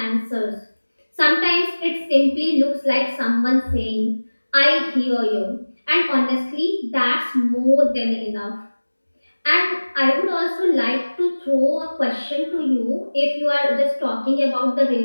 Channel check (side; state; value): both; inverted; correlation -1.00